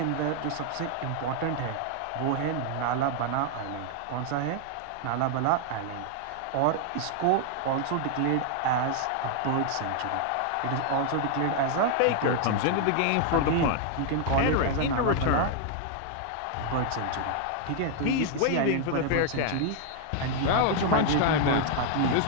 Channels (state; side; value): different; both; correlation 0.00